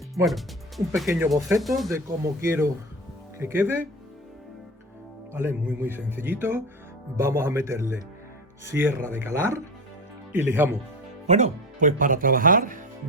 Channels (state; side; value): normal; both; correlation 0.25